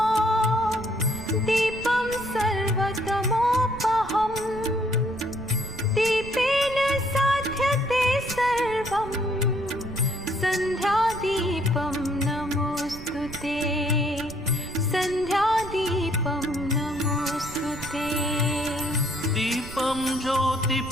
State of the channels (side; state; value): right; noise; rumble, 14 dB below the sound